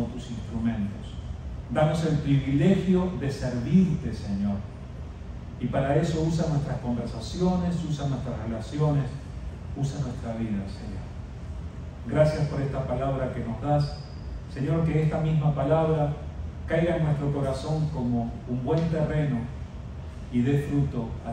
tus instrumentos. Danos el privilegio de servirte, Señor. Y para eso usa nuestras conversaciones, usa nuestras relaciones, usa nuestra vida, Señor. Gracias por esta palabra que nos das. Señor, que esta misma palabra caiga en nuestro corazón como un buen terreno y dé fruto a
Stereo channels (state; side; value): identical; both; correlation 1.00